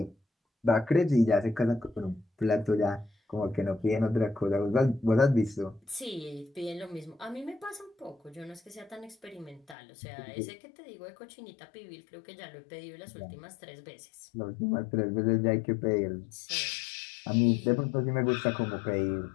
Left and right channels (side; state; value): right; drops out; at 9.8 s